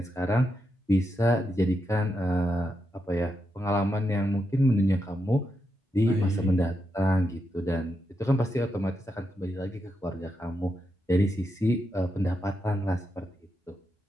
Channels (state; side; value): normal; both; correlation 0.85